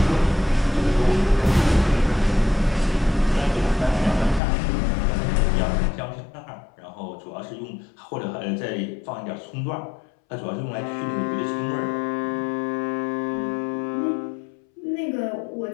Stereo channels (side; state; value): right; drops out; at 4.4 s